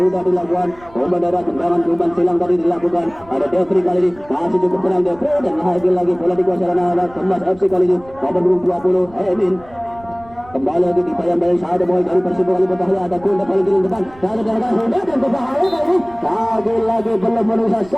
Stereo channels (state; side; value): noise; right; rumble, 23 dB below the sound